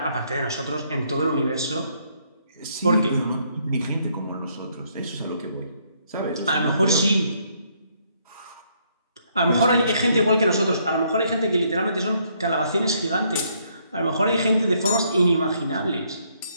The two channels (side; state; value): both; inverted; correlation -0.70